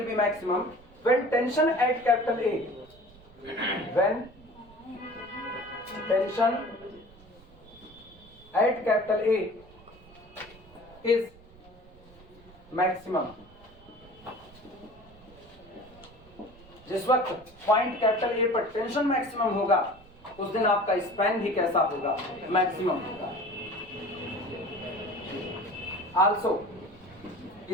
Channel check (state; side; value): noise; right; rumble, 24 dB below the sound